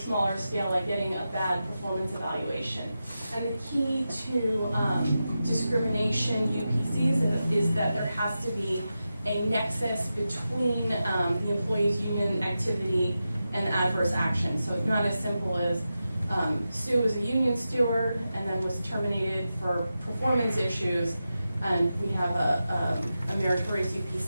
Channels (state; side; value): inverted; both; correlation -0.91